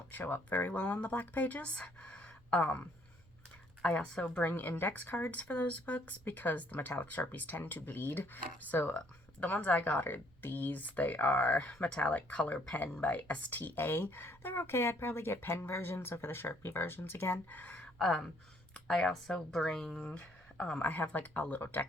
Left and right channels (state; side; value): noise; right; rumble, 27 dB below the sound